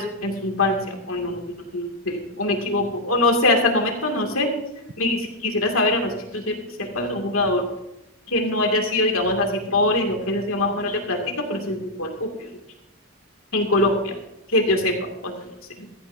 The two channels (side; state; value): both; normal; correlation -0.02